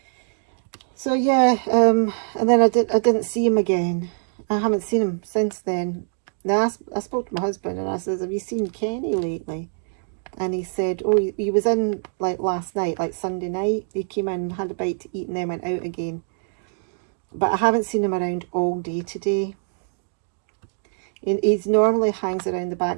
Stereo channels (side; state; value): left; silent; digital silence